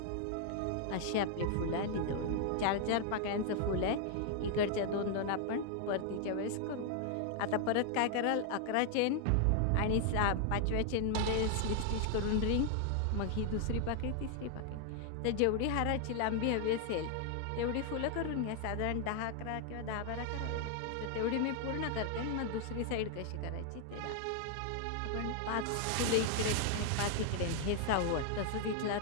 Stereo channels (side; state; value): both; different; correlation 0.00